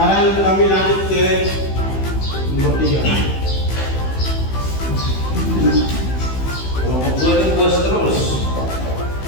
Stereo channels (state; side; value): late; right; 15 ms